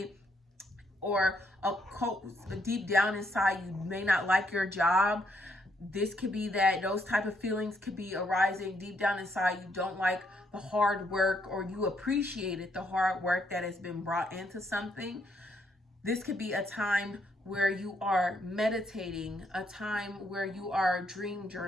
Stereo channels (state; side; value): normal; both; correlation 0.73